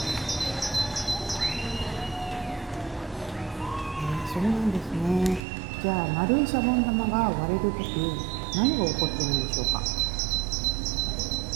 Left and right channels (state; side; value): drops out; left; at 5.4 s